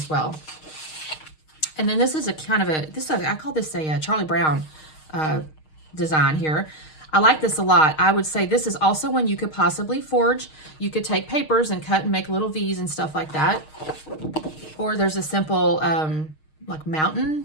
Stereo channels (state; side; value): late; right; 6.5 ms